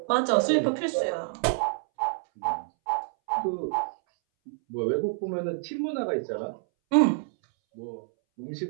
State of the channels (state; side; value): silent; left; 60 dB below the other